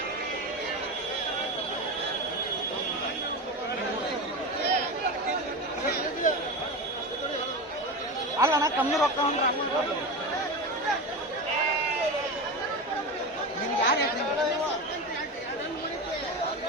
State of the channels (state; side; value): normal; both; correlation 0.23